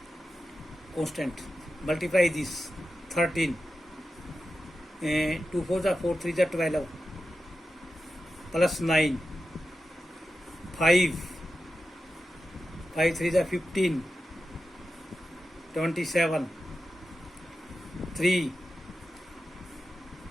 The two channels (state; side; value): normal; both; correlation 0.91